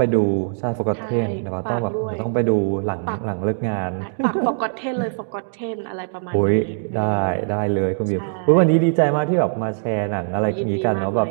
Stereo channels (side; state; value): left; silent; digital silence